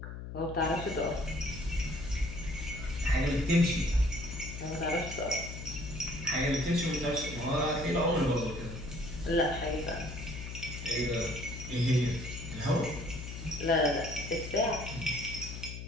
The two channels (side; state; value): left; noise; hum, 9 dB below the sound